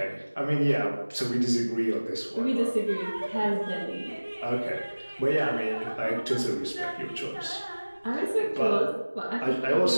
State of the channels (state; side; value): inverted; both; correlation -1.00